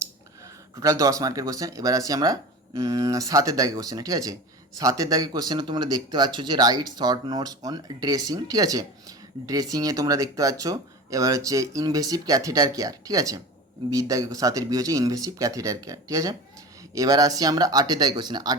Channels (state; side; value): normal; both; correlation 0.32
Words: টোটাল 10 মার্কের কোশ্চেন। এবার আসি আমরা 7-এর দাগে কোশ্চেনে, ঠিক আছে। 7-এর দাগে কোশ্চেনে তোমরা দেখতে পাচ্ছ যে right short notes on dressing, ঠিক আছে। ড্রেসিংয়ে তোমরা দেখতে পাচ্ছ এবার হচ্ছে ইনভেসিভ ক্যাথেটার কেয়ার, ঠিক আছে। বির দাগে 7-এর বি হচ্ছে ইনভেসিভ ক্যাথেটার কেয়ার, ঠিক আছে। এবার আসি আমরা 8-এর দাগে কোশ্চেনে।